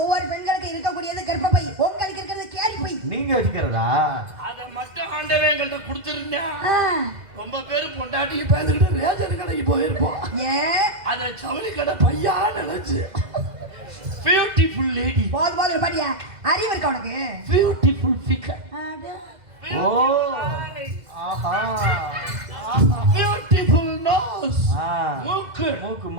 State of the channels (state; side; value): late; left; 2.0 ms